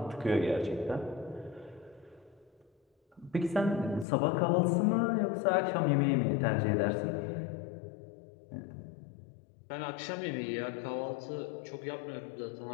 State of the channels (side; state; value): right; drops out; at 4.0 s